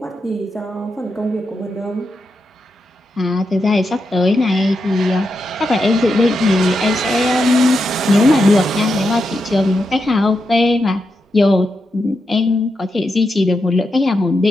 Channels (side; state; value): both; normal; correlation 0.86